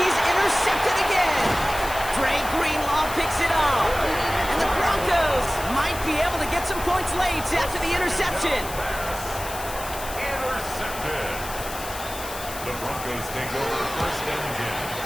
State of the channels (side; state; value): left; noise; hiss, 11 dB below the sound